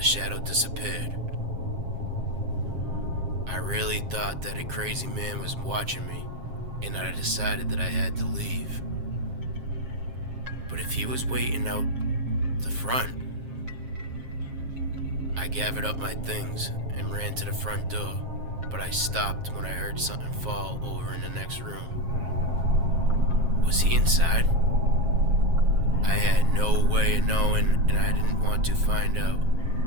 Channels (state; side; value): late; left; 7.5 ms